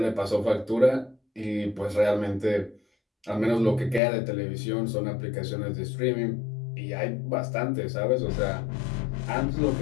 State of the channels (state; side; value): drops out; right; at 4.0 s